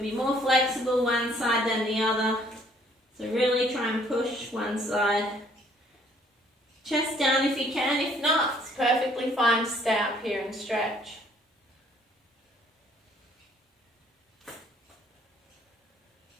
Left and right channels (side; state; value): both; normal; correlation 0.61